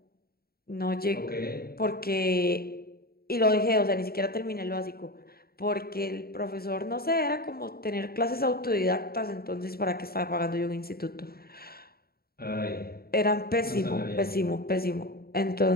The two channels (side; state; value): right; late; 0.44 ms